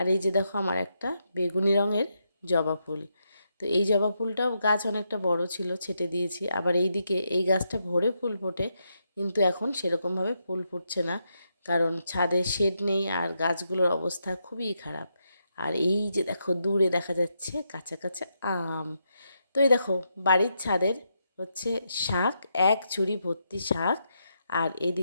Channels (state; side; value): inverted; both; correlation -0.82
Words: এই যে দেখো আমার একটা বেগুনি রঙের জবা ফুল। তো এই জবা ফুলটাও গাছ অনেকটা বড় ছিল, ছেটে দিয়েছি। আবার এই দিকে এই গাছটা ভরে ফুল ফোটে, কিন্তু এখন সেরকমভাবে ফুল ফুটছে না, কারণ ছাদে শেড নেই আর গাছগুলোর অবস্থা খুবই খারাপ। আর এই যে দেখো দূরে দেখা যাচ্ছে কাঁচা কাঁচা আম। তো এই দেখো বাড়ির ছাদের হচ্ছে শাক, এক ঝুড়ি ভর্তি শাক, আর